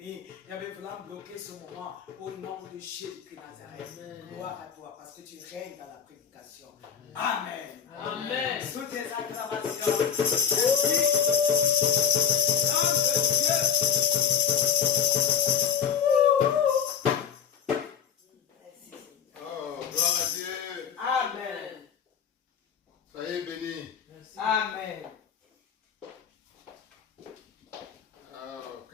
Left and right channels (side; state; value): right; quieter; 7.9 dB